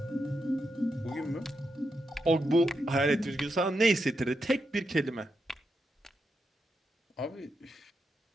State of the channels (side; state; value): both; normal; correlation 0.85